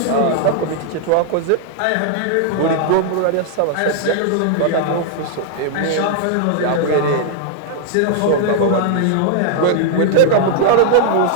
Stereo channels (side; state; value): both; different; correlation -0.01